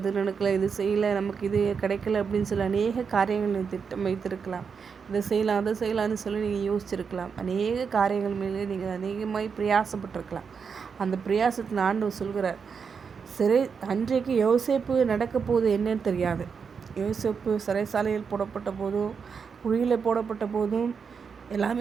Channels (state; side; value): quieter; left; 6.0 dB